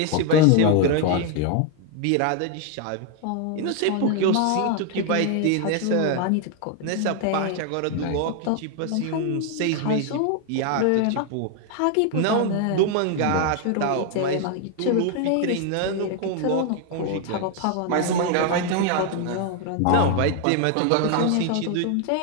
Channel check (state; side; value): different; both; correlation 0.01